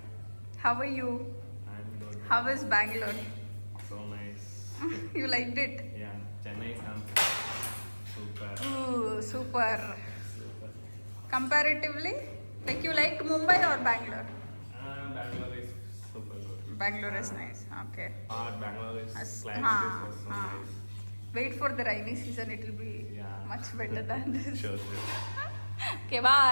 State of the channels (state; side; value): inverted; both; correlation -1.00